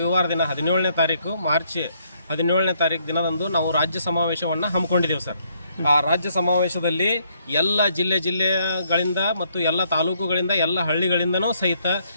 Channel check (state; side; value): inverted; both; correlation -0.71